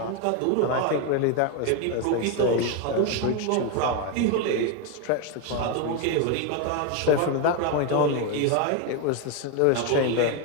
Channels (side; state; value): both; different; correlation 0.01